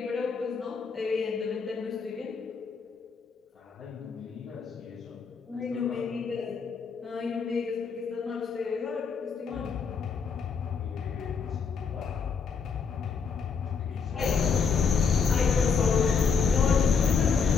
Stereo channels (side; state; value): right; quieter; 5.7 dB